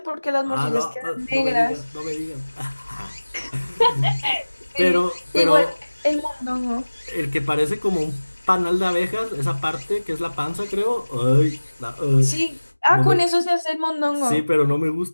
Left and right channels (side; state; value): both; inverted; correlation -1.00